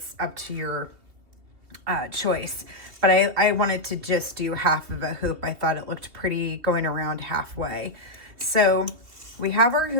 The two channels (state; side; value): late; left; 3.0 ms